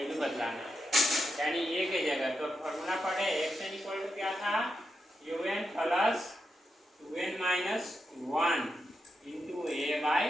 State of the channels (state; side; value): normal; both; correlation 0.86